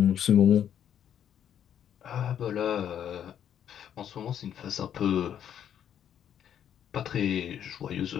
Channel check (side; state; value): right; quieter; 9.5 dB